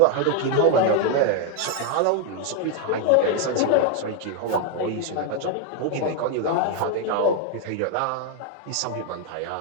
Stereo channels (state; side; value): different; both; correlation 0.01